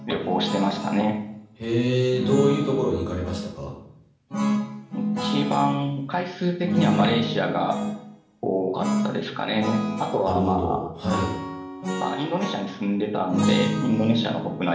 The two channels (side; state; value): both; identical; correlation 1.00